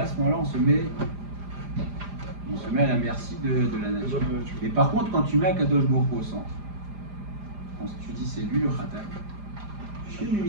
à ce moment-là, on se met à la merci de la nature. Mais par contre, quand tu mets Akadosh Baruch Hu au centre, quand tu dis c'est lui le Khatal, je fais mes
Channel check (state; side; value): late; left; 4.9 ms